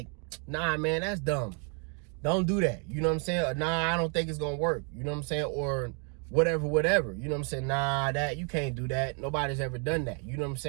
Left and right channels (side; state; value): left; quieter; 39.2 dB